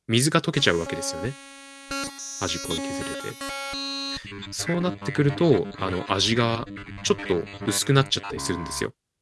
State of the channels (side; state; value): both; identical; correlation 1.00